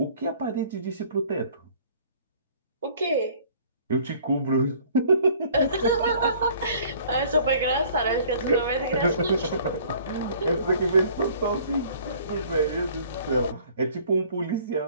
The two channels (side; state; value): both; inverted; correlation -0.54